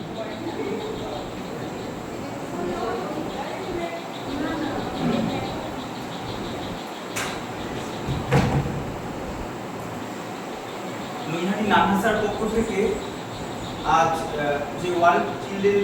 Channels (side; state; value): both; identical; correlation 1.00